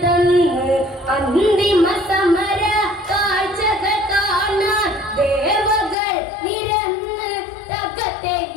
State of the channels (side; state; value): right; drops out; at 6.0 s